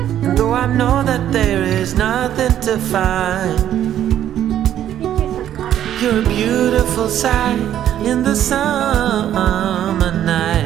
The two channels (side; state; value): left; quieter; 11.1 dB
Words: and though I know that there is nothing to find, you're a beautiful sight in the summer